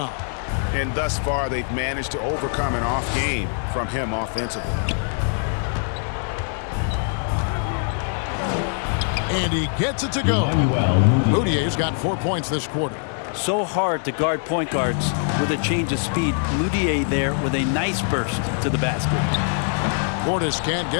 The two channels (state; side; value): silent; right; 56 dB below the other